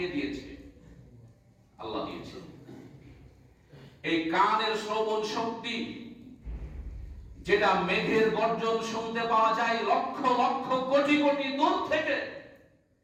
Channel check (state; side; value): identical; both; correlation 1.00